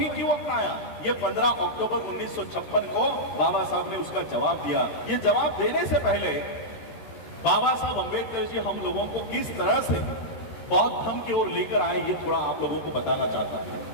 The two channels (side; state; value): right; late; 13 ms